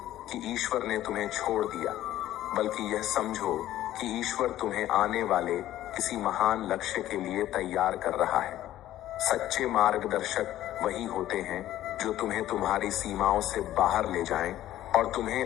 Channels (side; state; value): right; quieter; 13.6 dB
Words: कि ईश्वर ने तुम्हें छोड़ दिया, बल्कि यह समझो कि ईश्वर तुम्हें आने वाले किसी महान लक्ष्य के लिए तैयार कर रहा है। सच्चे मार्गदर्शक वही होते हैं जो तुम्हें तुम्हारी सीमाओं से बाहर ले जाएं और